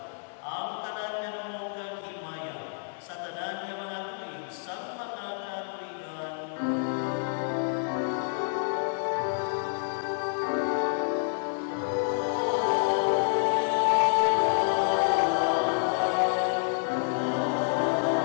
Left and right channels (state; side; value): silent; right; 59 dB below the other